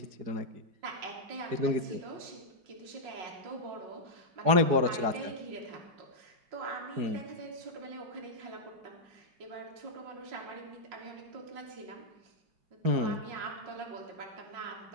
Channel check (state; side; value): late; left; 4.8 ms